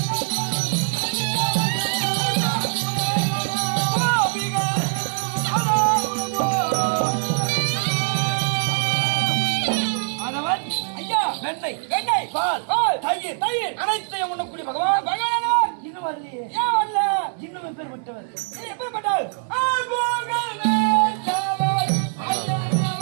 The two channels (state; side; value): silent; left; 64 dB below the other